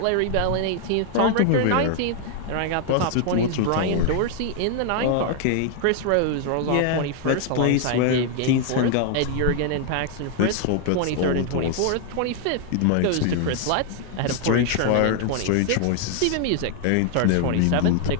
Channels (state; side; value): different; both; correlation 0.00